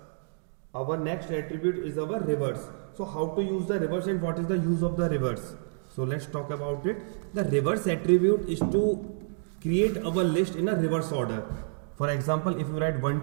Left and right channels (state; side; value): silent; left; digital silence